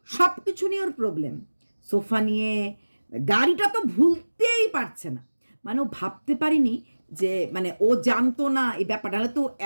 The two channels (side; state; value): both; inverted; correlation -1.00